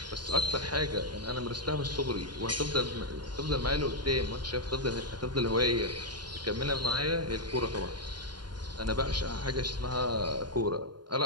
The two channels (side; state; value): left; late; 0.71 ms